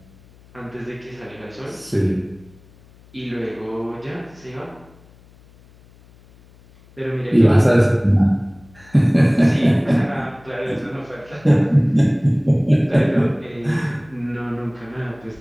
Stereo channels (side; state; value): left; noise; hum, 27 dB below the sound